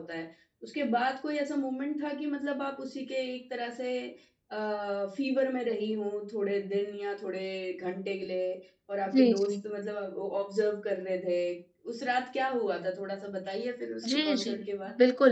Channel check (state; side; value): identical; both; correlation 1.00